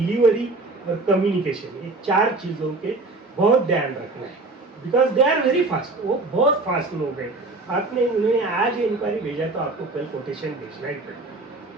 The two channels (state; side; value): quieter; left; 3.2 dB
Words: और कम्युनिकेशन, ये 4 चीज़ों के बहुत ध्यान रखना है, because they are very fast. वो बहुत फास्ट लोग हैं। आपने उन्हें आज इंक्वायरी भेजा तो आपको कल कोटेशन भेजना ही पड़ेगा।